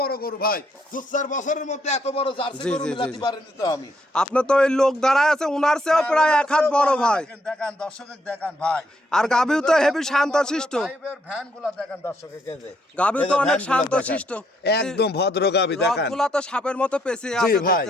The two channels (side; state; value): both; normal; correlation 0.73